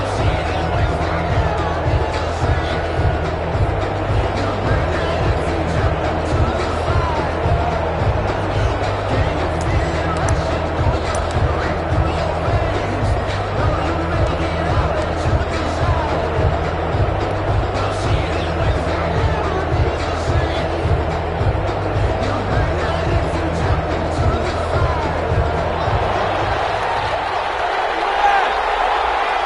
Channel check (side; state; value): both; identical; correlation 1.00